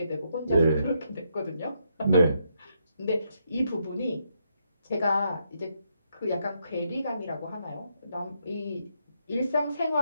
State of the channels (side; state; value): both; inverted; correlation -0.78